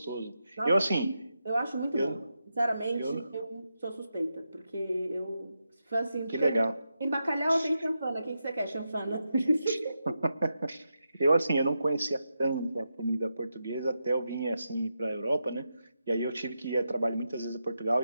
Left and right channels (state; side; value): inverted; both; correlation -0.87